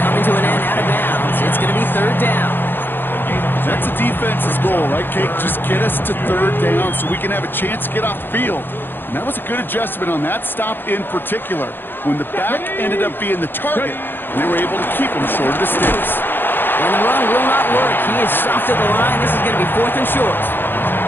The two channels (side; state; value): right; late; 0.098 ms